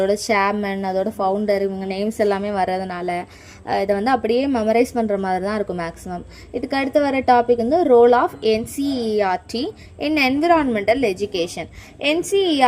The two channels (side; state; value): both; identical; correlation 1.00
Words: சேர்மன், அதோட ஃபவுண்டர், இவங்க நேம்ஸ் எல்லாமே வர்றதுனால இதை வந்து அப்படியே மெமரைஸ் பண்ணுற மாதிரி தான் இருக்கும் மேக்ஸிமம். இதுக்கு அடுத்து வர டாபிக் வந்து role of NCERT in environmental education.